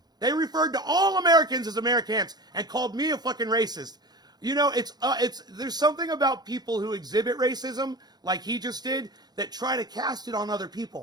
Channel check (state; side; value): late; left; 0.19 ms